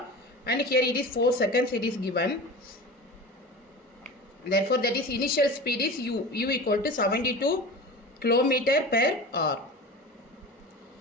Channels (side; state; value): both; normal; correlation 0.33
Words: and here it is 4 seconds it is given. Therefore, that is initial speed is U equal to 72 km per hour